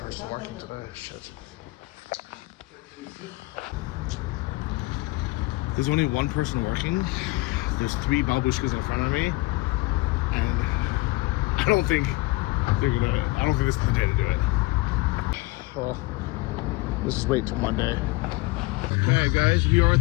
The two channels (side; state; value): right; quieter; 21.5 dB